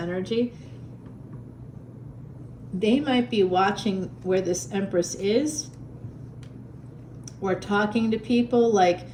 They might be watching where this Empress is, or talking to people. Like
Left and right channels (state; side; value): identical; both; correlation 1.00